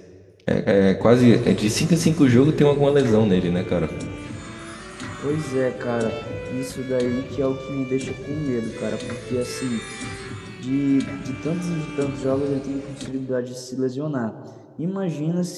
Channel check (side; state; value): both; identical; correlation 1.00